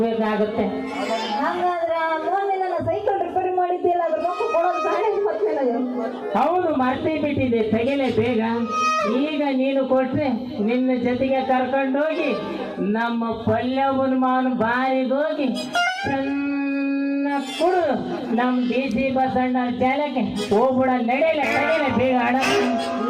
ಹಂಗಾದ್ರೆ ಮೊನ್ನೆ ನನ್ನ ಸೈಕಲ್ ರಿಪೇರಿ ಮಾಡಿದ್ದಿಲ್ಲ, ಅದ್ರ ರೊಕ್ಕ ಕೊಡೋದು ಬೇಡ ಮತ್ತೆ. ಹೌದು, ಮರ್ತೇ ಬಿಟ್ಟಿದ್ದೆ, ತೆಗೆಲೆ ಬೇಗ. ಈಗ ನೀನು ಕೊಟ್ರೆ ನಿನ್ನ ಜೊತೆಗೆ ಕರ್ಕೊಂಡೋಗಿ ನಮ್ಮ ಪಲ್ಯವನ್ ಮಾವನ ಬಾರಿಗೋಗಿ ಕುಡು ನಮ್ DC ಬಸಣ್ಣ ಜಾಲಕ್ಕೆ ಹೋಗ್ಬಿಡ. ನಡೆಯಲ್ಲ ಬೇಗ ಆಡ.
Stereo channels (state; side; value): identical; both; correlation 1.00